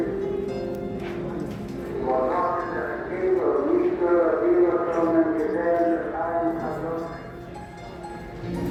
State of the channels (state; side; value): identical; both; correlation 1.00